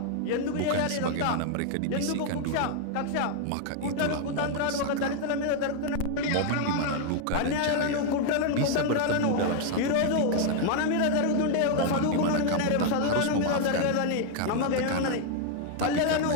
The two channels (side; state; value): both; different; correlation 0.00